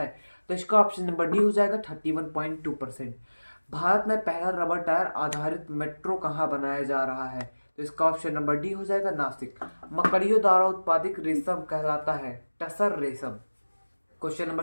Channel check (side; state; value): both; inverted; correlation -1.00